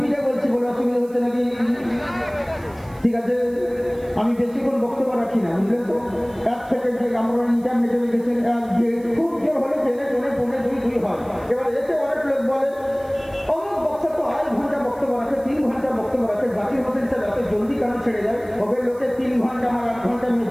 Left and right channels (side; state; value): right; noise; hiss, 27 dB below the sound